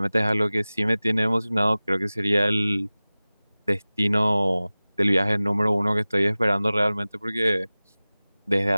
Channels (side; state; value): both; inverted; correlation -0.98